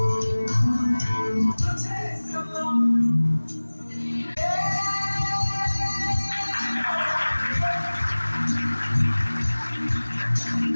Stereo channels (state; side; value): inverted; both; correlation -1.00